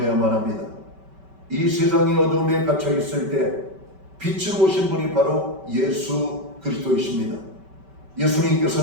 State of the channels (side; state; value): left; late; 5.2 ms